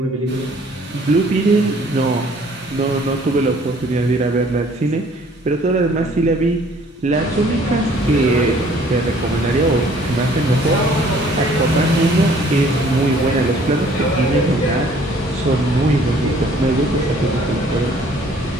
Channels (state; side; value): normal; both; correlation 0.57